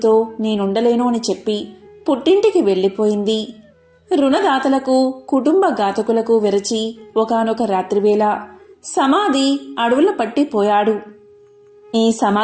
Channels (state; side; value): identical; both; correlation 1.00